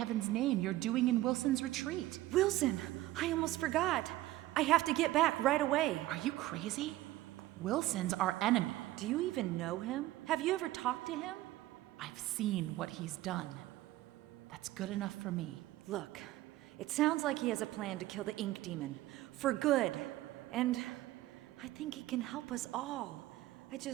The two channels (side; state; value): left; quieter; 16.4 dB